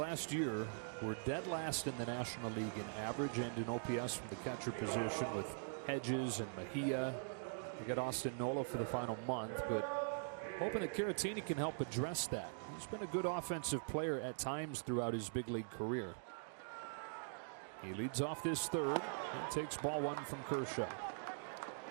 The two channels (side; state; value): left; silent; digital silence